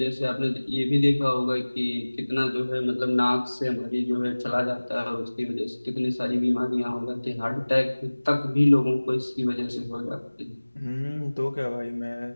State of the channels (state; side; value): inverted; both; correlation -1.00